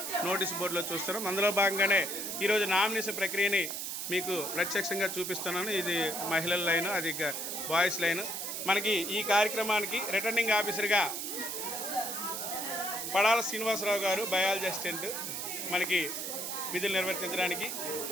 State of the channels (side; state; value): right; noise; hiss, 4 dB below the sound